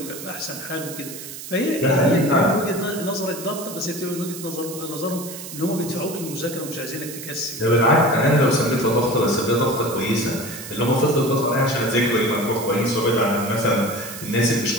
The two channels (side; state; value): right; noise; hiss, 11 dB below the sound